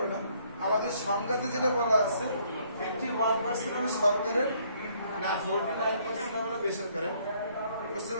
না, আমাদের সংজ্ঞাতে যেটা বলা আছে 51% হলো সরকারের, না 49% হলো বেসরকারের, বুঝতে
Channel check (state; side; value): inverted; both; correlation -0.66